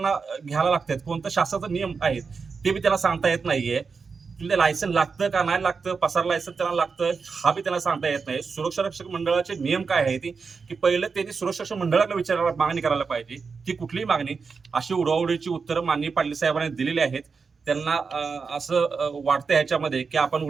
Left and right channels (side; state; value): left; quieter; 5.1 dB